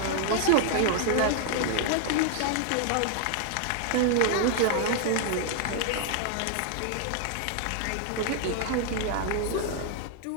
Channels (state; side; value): different; both; correlation 0.00